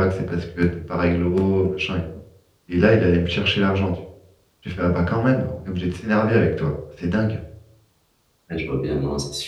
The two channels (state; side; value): identical; both; correlation 1.00